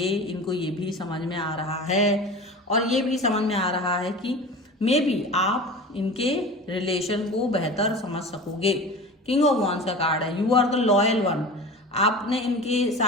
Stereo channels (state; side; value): normal; both; correlation 0.34